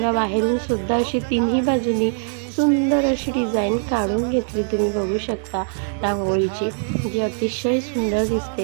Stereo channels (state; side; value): silent; left; digital silence